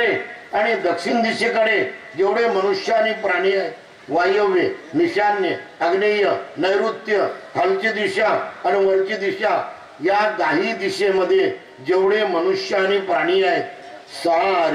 आणि दक्षिण दिशेकडे जेवढे मनुष्य आणि प्राणी आहेत, वायव्य, ईशान्य, आग्नेय, नैऋत्य, खालची दिशा आणि वरची दिशा, या 10 दिशेमध्ये जेवढे मनुष्य आणि प्राणी आहेत,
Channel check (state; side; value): identical; both; correlation 1.00